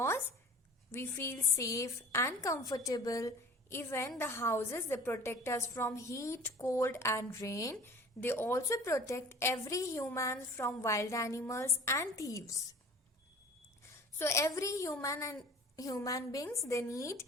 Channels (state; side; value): normal; both; correlation 0.44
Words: we feel safe and comfortable. Even the houses, they protect us from heat, cold and rain. They also protect every human from wild animals and thieves. So every human beings, they need